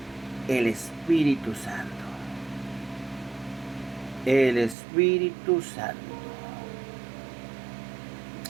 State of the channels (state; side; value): drops out; left; at 4.8 s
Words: El Espíritu Santo. El Espíritu Santo.